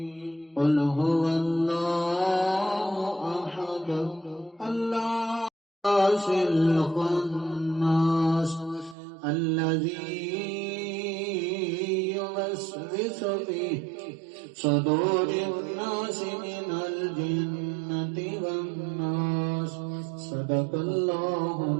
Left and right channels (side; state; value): left; drops out; at 9.0 s